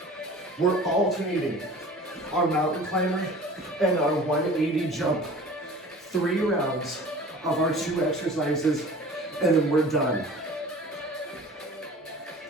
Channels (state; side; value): normal; both; correlation 0.43